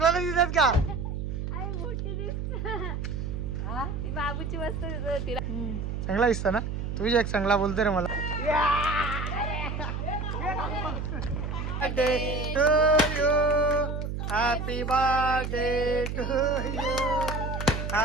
नाही दिसत का? मोठी दिसत ती बाबूची वस्तू तिला चांगला दिसता ना. तुझी एक चांगला बोलतो रे मला. Birthday to you, happy birthday to you,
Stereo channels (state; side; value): noise; right; hum, 4 dB below the sound